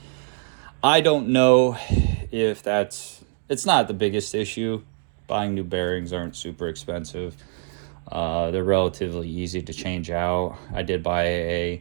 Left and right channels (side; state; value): left; silent; digital silence